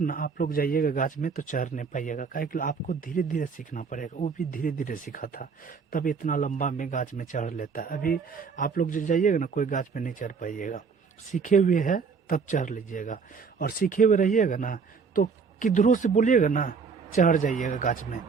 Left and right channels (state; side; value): quieter; left; 5.5 dB